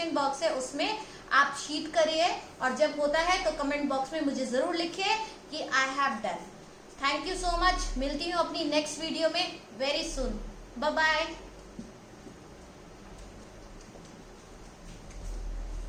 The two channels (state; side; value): identical; both; correlation 1.00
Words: बॉक्स है उसमें आप शीट करिए, और जब होता है तो कमेंट बॉक्स में मुझे जरूर लिखिए कि I have done. Thank you so much. मिलती हूँ अपनी नेक्स्ट वीडियो में वेरी सून। Bye bye.